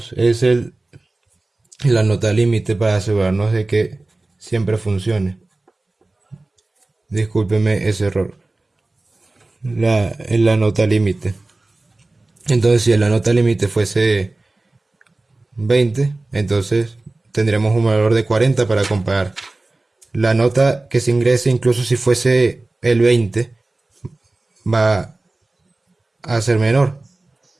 es la nota límite para asegurarnos de que siempre funcione. Discúlpeme ese error. En la nota límite. Entonces, si la nota límite fuese 20, entonces tendríamos un valor de 40 para comparar. La nota que se ingrese, incluso si fuese el 20, va a ser menor.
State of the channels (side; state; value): left; quieter; 3.0 dB